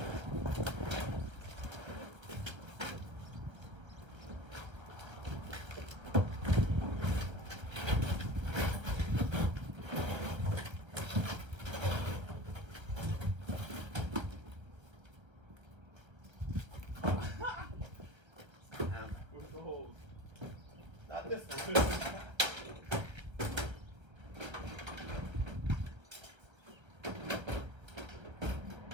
Not this one.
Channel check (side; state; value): left; late; 1.3 ms